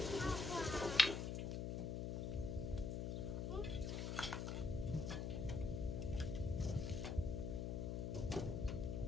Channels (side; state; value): left; noise; hum, 1 dB below the sound